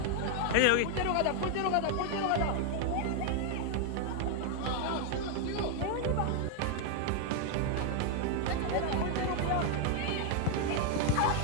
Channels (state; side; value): different; both; correlation 0.00